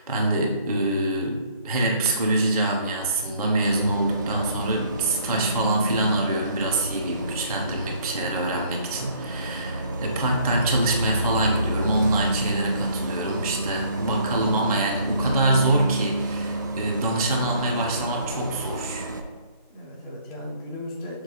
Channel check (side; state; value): both; inverted; correlation -0.60